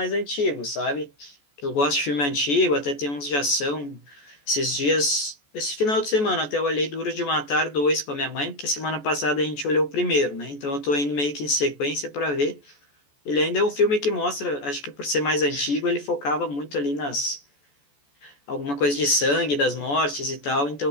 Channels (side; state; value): right; late; 14 ms